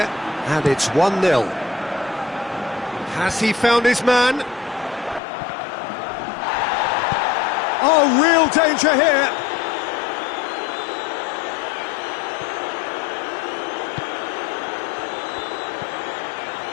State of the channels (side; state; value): right; drops out; at 5.2 s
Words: and it's 1-0. Has he found his man? Oh, real danger here.